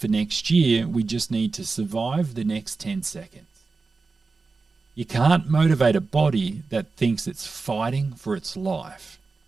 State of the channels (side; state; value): left; quieter; 4.1 dB